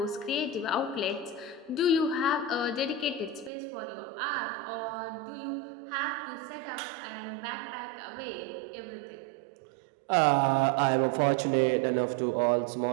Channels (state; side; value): drops out; left; at 3.5 s